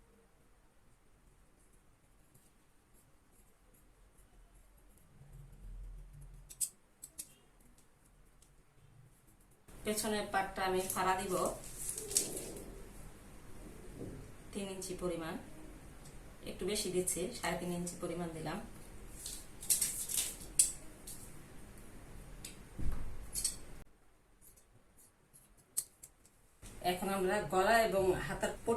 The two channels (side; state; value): both; identical; correlation 1.00